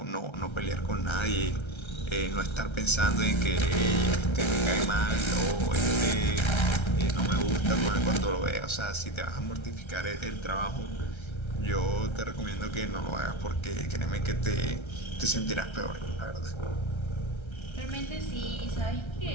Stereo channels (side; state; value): right; late; 1.3 ms